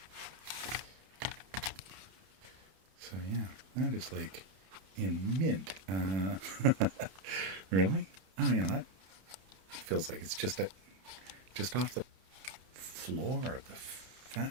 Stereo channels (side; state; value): left; late; 31 ms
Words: So yeah, that is like in mint. Really? Oh yeah, that feels like it's just off the floor of the